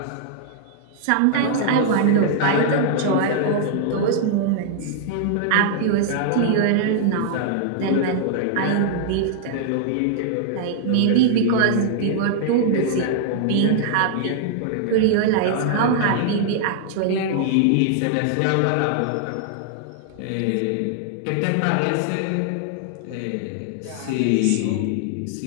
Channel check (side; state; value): both; different; correlation -0.01